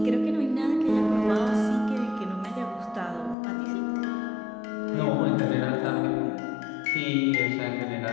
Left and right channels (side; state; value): right; drops out; at 3.4 s